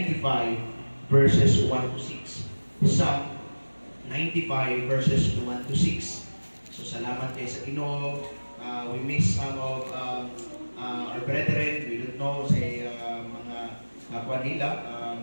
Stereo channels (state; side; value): inverted; both; correlation -1.00